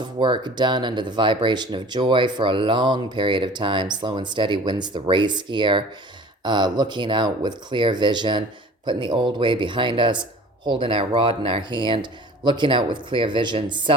of work done under the vibration of joy for a long period of time. Slow and steady wins the race here. Looking out with clear vision, putting the old way behind us, holding our rod in our hand, looking out with clear vision,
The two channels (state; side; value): normal; both; correlation 0.45